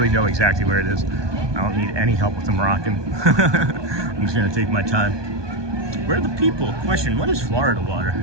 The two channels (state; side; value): late; left; 1.2 ms